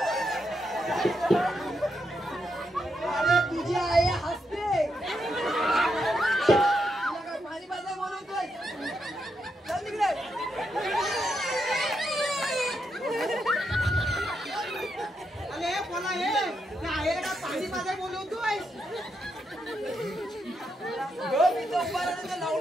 अरे तुझी आई हसते. तुला काय पाणी पाजाय बोलवतोय? चल तिकडे. अरे कोणा हे आईला का पाणी पाजाय बोलवतोय.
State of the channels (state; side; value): normal; both; correlation 0.82